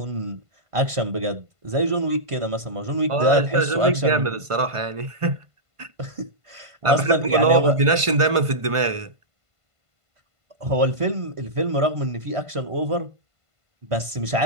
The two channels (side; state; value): left; late; 1.5 ms